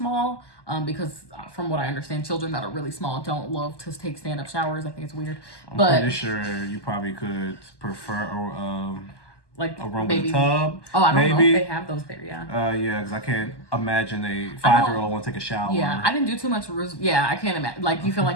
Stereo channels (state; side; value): late; right; 1.2 ms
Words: because from what I understand, children that are really small don't love to take stand-up showers. I think it's weird. I'm pretty sure you probably could prefer like a room with a tub. Oh, I don't know if they have those there, yeah. Yeah, because I can't imagine a 5-year-old want to take a shower. Yeah, I didn't do too much. I can't imagine. Like, you feel